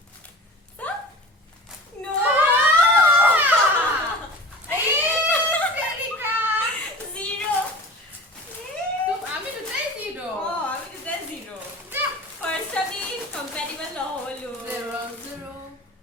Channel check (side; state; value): both; normal; correlation 0.37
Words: so no zero আমি দুটাই জিরো আমি দুটা zero first আমি compatible নহলো